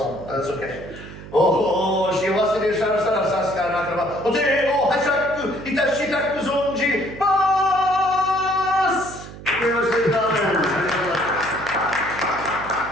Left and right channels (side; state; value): right; noise; hum, 15 dB below the sound